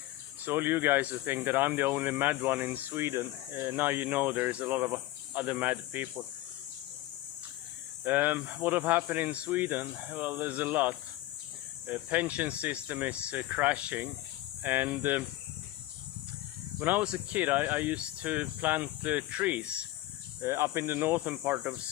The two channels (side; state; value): right; quieter; 16.5 dB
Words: So all you guys who think that I'm the only mad one in Sweden, now you know there's a lot of other mad people. What have happened in Sweden? Well, there's a lot. Pension system is crashing, and when I was a kid I used to plant trees up in the northern part of